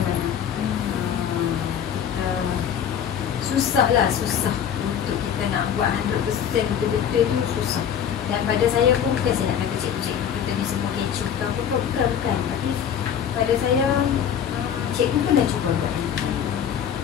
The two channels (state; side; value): quieter; right; 8.6 dB